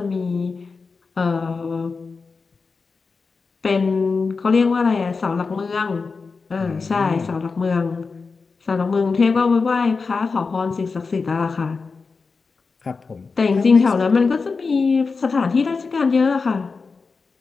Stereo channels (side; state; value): right; quieter; 4.6 dB